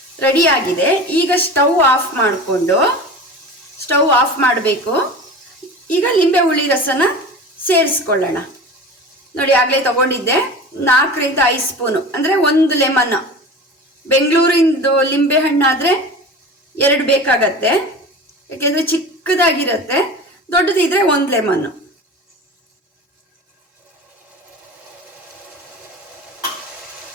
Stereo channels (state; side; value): normal; both; correlation 0.34